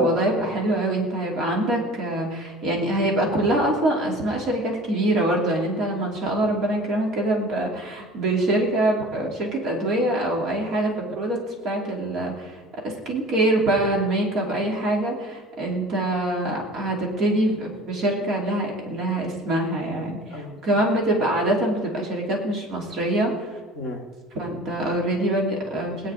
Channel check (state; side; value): normal; both; correlation 0.43